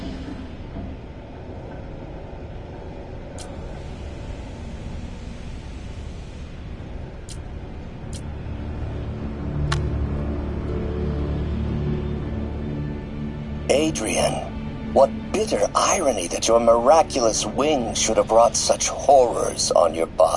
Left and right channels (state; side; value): identical; both; correlation 1.00